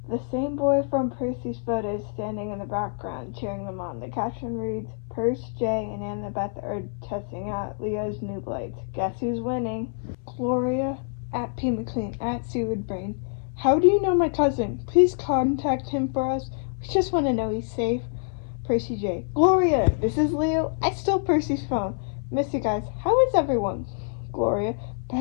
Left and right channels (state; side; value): silent; right; 61 dB below the other